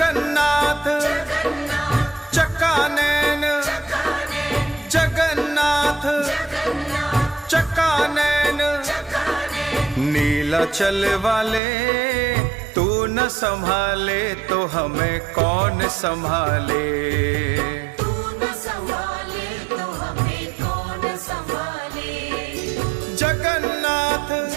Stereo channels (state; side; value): drops out; left; at 11.6 s